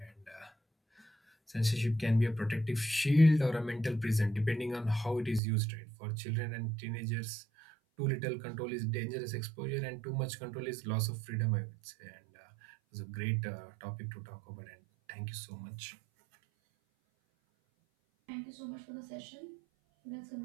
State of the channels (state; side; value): drops out; left; at 5.4 s